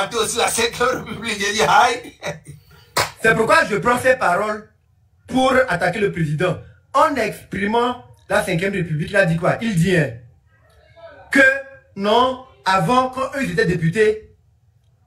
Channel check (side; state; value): both; identical; correlation 1.00